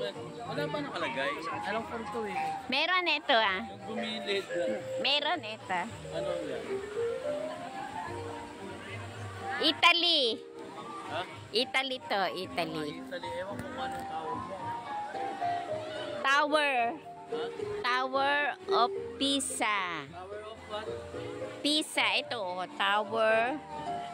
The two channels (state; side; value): identical; both; correlation 1.00